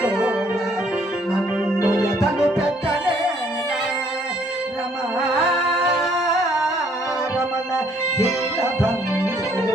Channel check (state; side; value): normal; both; correlation 0.64